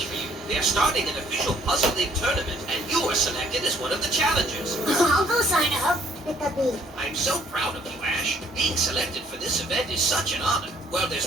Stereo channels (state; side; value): normal; both; correlation 0.62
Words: for you. They're starting an official Puzzle League tournament, and you were selected as one of the challengers. I'll go sign up. I'm so proud of you, Ash. Being selected for this event is such an honor. Well,